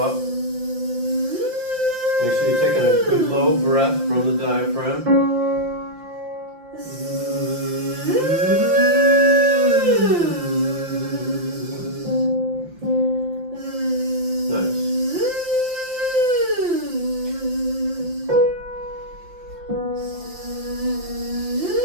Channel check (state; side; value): late; left; 5.8 ms